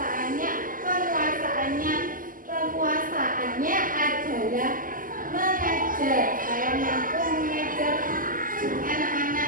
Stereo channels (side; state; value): left; late; 0.40 ms